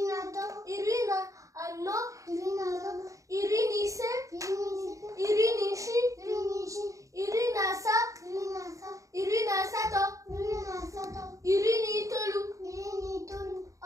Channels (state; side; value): late; left; 0.16 ms